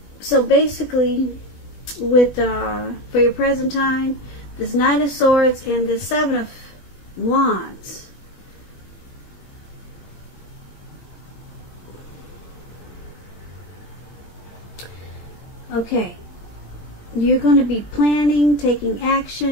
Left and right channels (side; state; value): right; late; 20 ms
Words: basically, with for your present time, this Knight of Swords and this Seven of Wands. Okay. You're going to be planning, taking